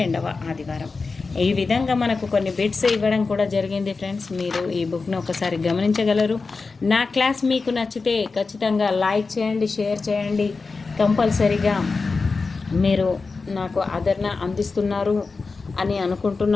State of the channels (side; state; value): right; quieter; 4.2 dB